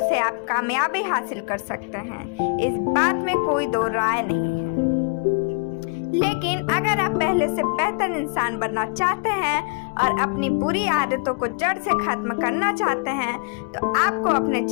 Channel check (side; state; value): right; quieter; 34.0 dB